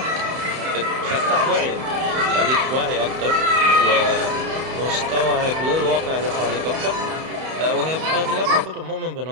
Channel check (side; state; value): left; late; 31 ms